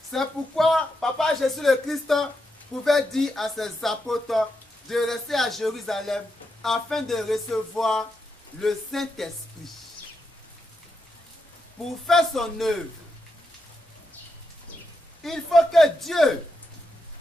C'est pourquoi Papa Jésus le Christ pouvait dire à ses apôtres de rester à Jérusalem afin de recevoir le Saint-Esprit pour faire son œuvre. Il faut que Dieu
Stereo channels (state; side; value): normal; both; correlation 0.84